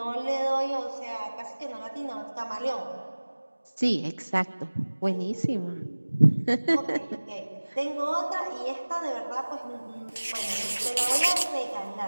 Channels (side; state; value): both; inverted; correlation -1.00